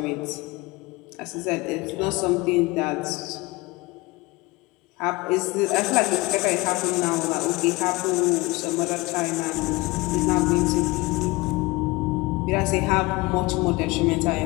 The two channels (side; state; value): right; quieter; 22.7 dB